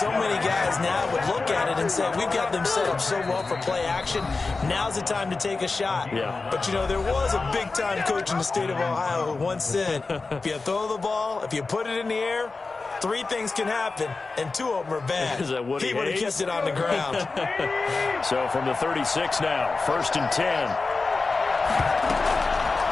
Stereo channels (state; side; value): quieter; right; 3.9 dB